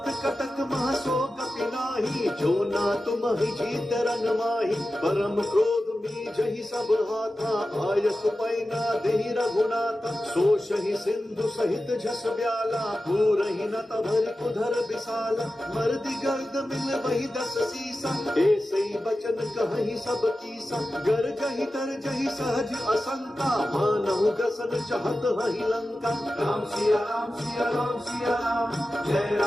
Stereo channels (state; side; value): normal; both; correlation 0.93